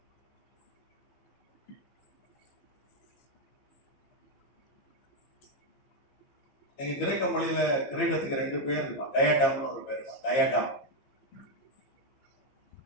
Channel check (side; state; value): right; late; 15 ms